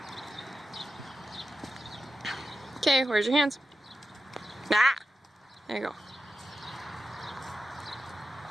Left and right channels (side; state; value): both; normal; correlation 0.91